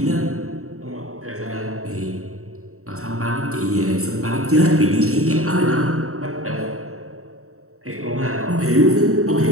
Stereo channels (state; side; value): late; left; 0.64 ms